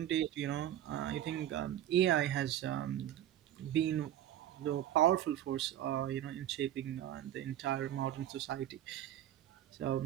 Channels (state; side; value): quieter; left; 11.9 dB